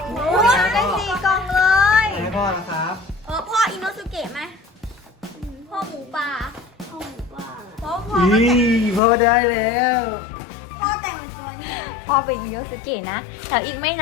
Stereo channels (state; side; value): drops out; right; at 9.0 s